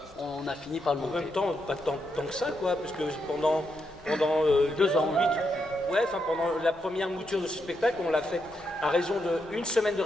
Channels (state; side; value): normal; both; correlation 0.81